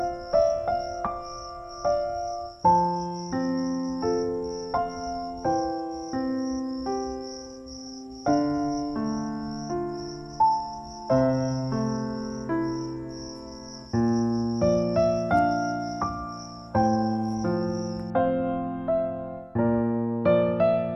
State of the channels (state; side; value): identical; both; correlation 1.00